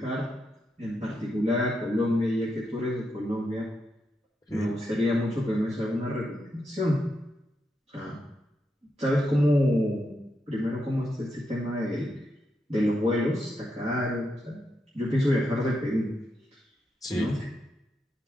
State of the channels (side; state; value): both; normal; correlation 0.84